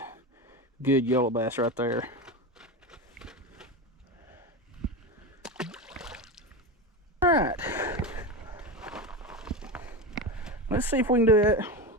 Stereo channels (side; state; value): both; normal; correlation 0.21